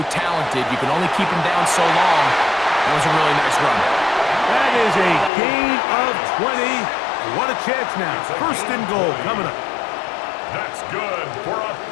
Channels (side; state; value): right; drops out; at 5.3 s